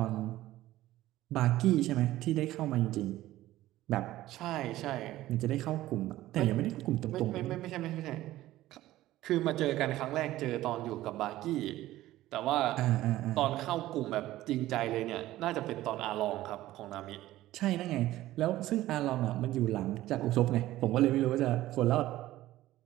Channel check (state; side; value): quieter; left; 15.4 dB